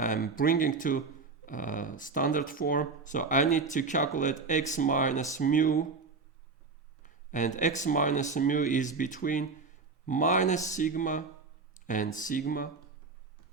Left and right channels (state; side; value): quieter; left; 4.4 dB